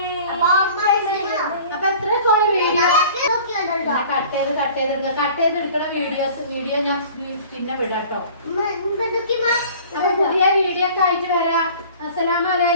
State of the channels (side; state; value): both; inverted; correlation -0.46